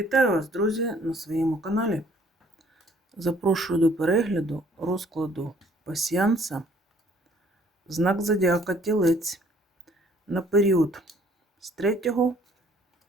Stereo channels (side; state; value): both; normal; correlation 0.60